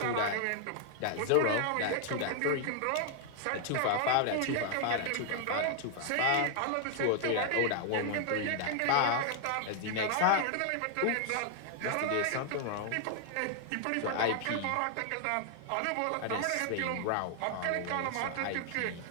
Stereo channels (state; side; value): different; both; correlation 0.00